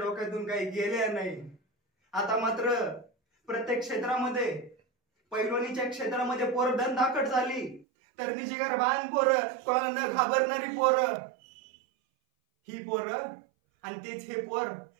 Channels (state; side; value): drops out; left; at 7.9 s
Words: काही गेल्या नाही. आता मात्र प्रत्येक क्षेत्रामध्ये, पैलवानीच्या क्षेत्रामध्ये पोरं दणदाखट झाली, तरी जिगरबान पोरं, कोणाला न घाबरणारी पोरं, ही पोरं. आणि तेच हे पोर